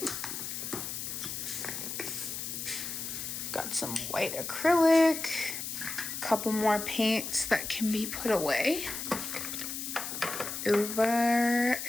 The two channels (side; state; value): left; noise; hiss, 5 dB below the sound